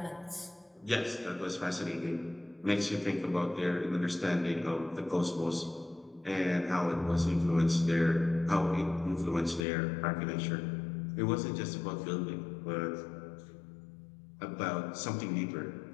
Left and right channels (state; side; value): drops out; right; at 9.7 s